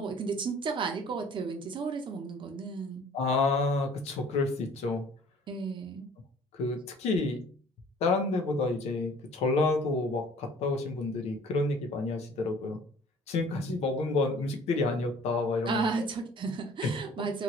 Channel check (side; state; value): both; normal; correlation 0.51